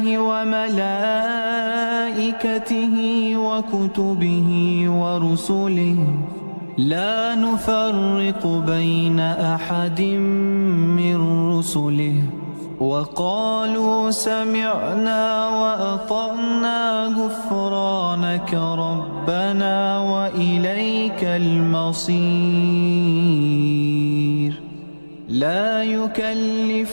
وملائكته وكتبه ورسله لا نفرق بين أحد من رسله وقالوا سمعنا وأطعنا غفرانك ربنا وإليك المصير. لا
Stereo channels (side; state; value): both; inverted; correlation -1.00